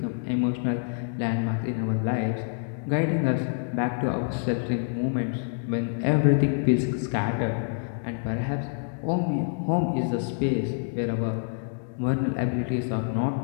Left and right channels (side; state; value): right; silent; digital silence